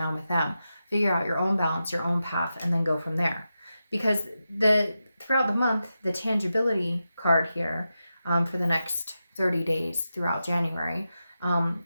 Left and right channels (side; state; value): both; inverted; correlation -0.90